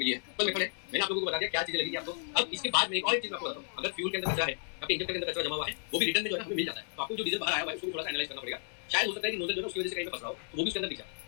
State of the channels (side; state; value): right; silent; digital silence